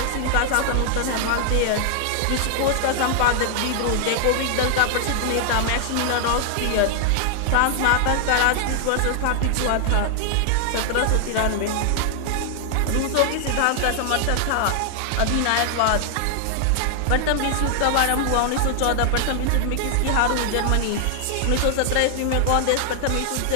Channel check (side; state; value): both; different; correlation 0.00